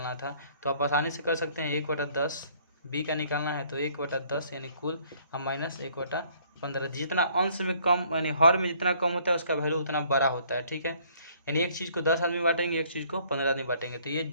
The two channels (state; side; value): inverted; both; correlation -0.61